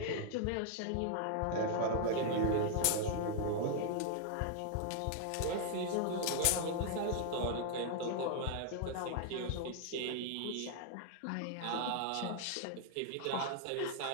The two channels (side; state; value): both; different; correlation 0.00